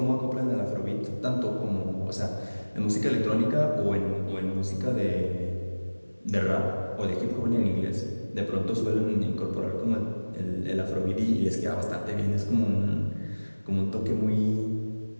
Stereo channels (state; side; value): inverted; both; correlation -1.00